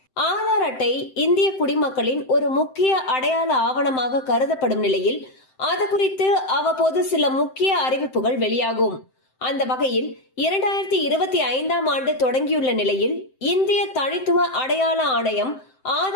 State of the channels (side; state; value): right; late; 7.7 ms